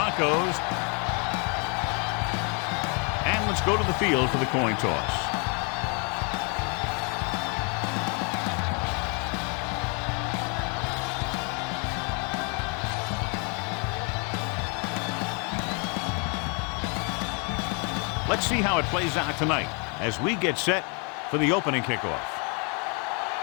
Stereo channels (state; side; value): quieter; right; 35.4 dB